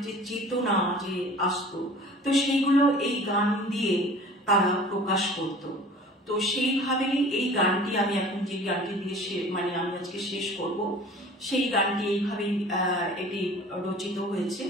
যে চেতনা যে আসতো, তো সেইগুলো এই গান দিয়ে তারা প্রকাশ করত। তো সেইভাবেই এই গানটি আমি এখন যে গানটি দিয়ে মানে আমি আজকে শেষ করব, সেই গানটি এইভাবেই এটি রচিত হয়েছে।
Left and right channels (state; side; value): normal; both; correlation 0.44